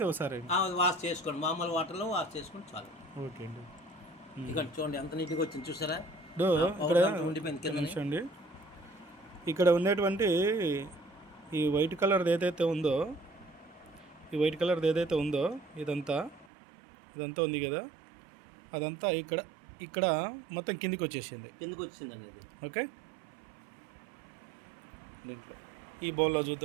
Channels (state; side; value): drops out; left; at 16.4 s